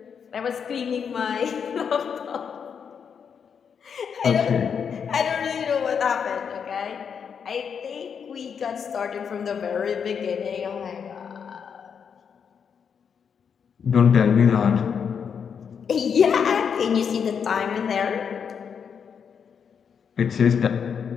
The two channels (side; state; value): right; quieter; 7.0 dB